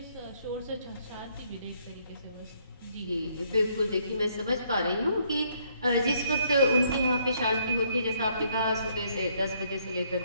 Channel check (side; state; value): both; inverted; correlation -0.68